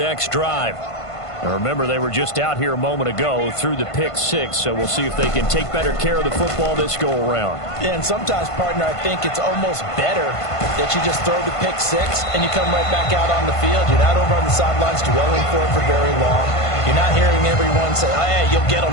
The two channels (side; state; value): right; late; 1.5 ms